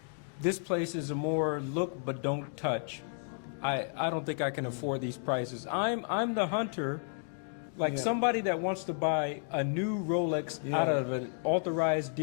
this place is a more look but don't touch. I don't think I can afford these prices. I'm the hunter, like Yeah. somebody that wants to buy a new Rolex out of an authorized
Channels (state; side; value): silent; right; 56 dB below the other